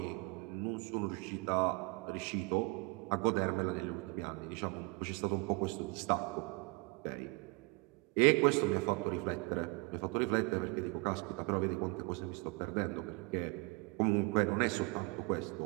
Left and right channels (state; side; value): quieter; left; 27.7 dB